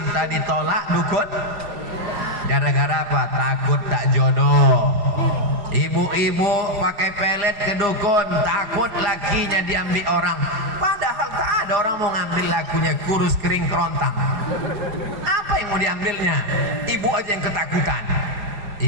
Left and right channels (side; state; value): left; late; 4.9 ms